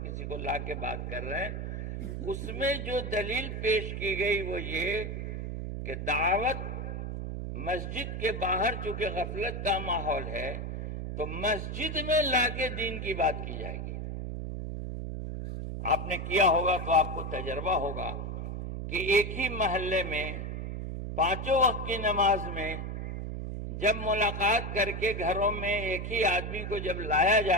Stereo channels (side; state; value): right; noise; hum, 5 dB below the sound